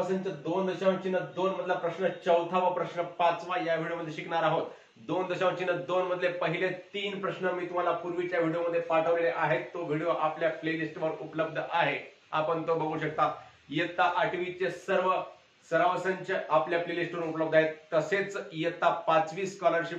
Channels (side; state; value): both; identical; correlation 1.00